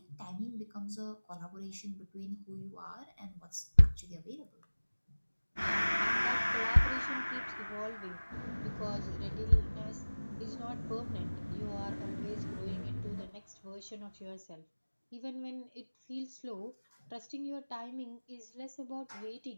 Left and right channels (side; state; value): both; inverted; correlation -1.00